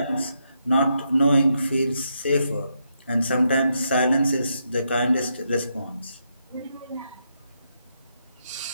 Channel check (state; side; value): inverted; both; correlation -0.81